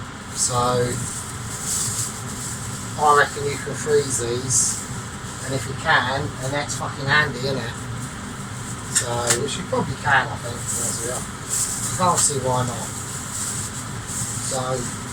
So I reckon you can freeze these, and if you can, then that's fucking handy, isn't it? So, which you probably can, I think, to be honest with you. I can't see why not. So,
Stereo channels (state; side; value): identical; both; correlation 1.00